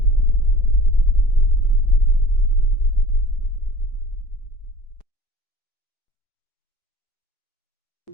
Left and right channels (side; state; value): right; late; 4.9 ms